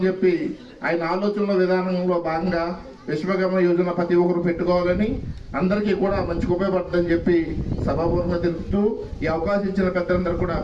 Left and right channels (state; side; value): identical; both; correlation 1.00